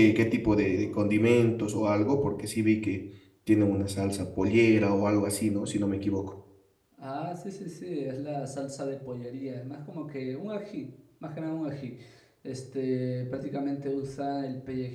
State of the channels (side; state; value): both; identical; correlation 1.00